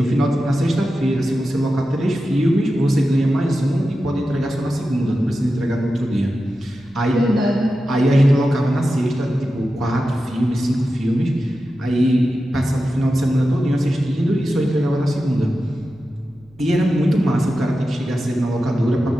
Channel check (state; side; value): noise; right; hum, 29 dB below the sound